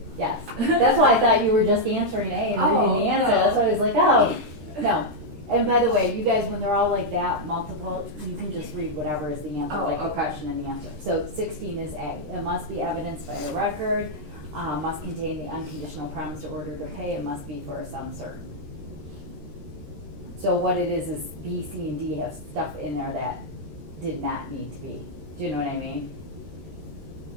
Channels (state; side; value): late; left; 13 ms